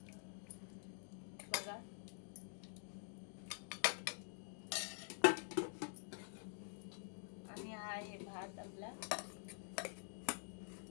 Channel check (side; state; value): right; silent; digital silence